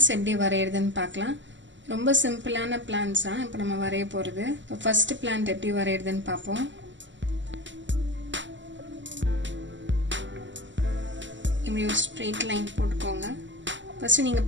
எப்படி வரையறதுன்னு பார்க்கலாம். ரொம்ப சிம்பிளான plants தான் இப்போ நம்ம வரைய போறது. இப்போ first plant எப்படி வரையறதுன்னு பார்ப்போம். இப்படி ஒரு straight line போட்டுக்கோங்க. ஃபர்ஸ்ட் நீங்க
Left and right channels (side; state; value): left; late; 0.54 ms